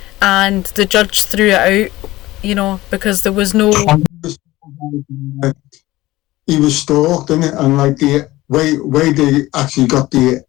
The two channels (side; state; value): right; quieter; 17.8 dB